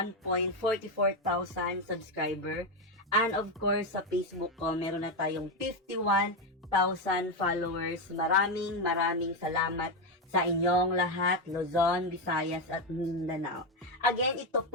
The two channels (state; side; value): normal; both; correlation 0.09